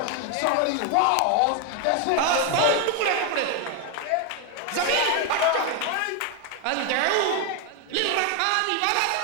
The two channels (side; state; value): both; different; correlation 0.01